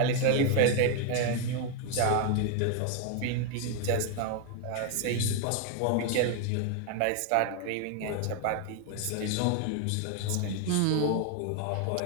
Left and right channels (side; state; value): both; different; correlation 0.01